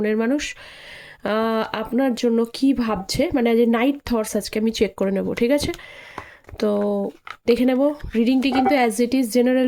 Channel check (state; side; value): identical; both; correlation 1.00